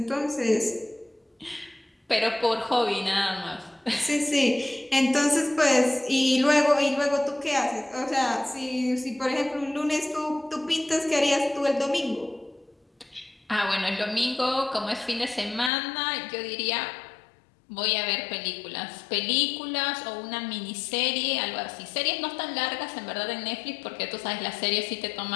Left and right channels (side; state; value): right; drops out; at 15.7 s